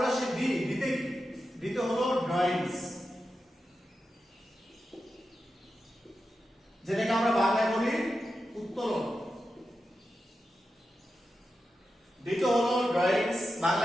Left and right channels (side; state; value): both; normal; correlation 0.90